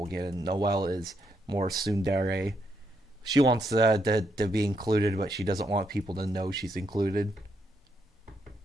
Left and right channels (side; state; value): both; normal; correlation 0.79